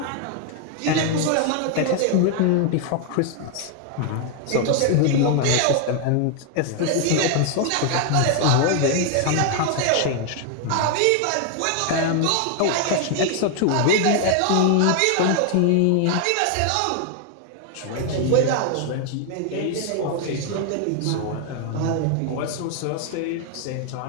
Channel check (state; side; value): different; both; correlation 0.00